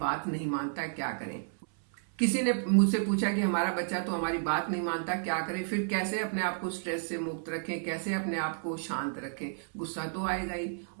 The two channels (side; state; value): left; silent; 57 dB below the other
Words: बात नहीं मानता, क्या करें। किसी ने मुझसे पूछा कि हमारा बच्चा तो हमारी बात नहीं मानता, क्या करें। फिर कैसे अपने आप को स्ट्रेस से मुक्त रखें, कैसे अपने आप को शांत रखें। गुस्सा तो आएगा ही,